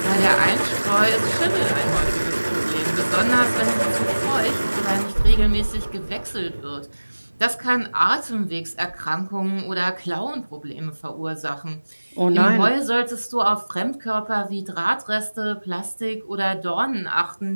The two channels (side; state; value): both; inverted; correlation -1.00